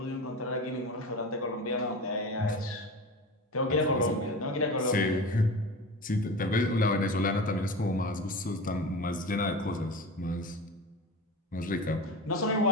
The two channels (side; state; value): both; normal; correlation 0.30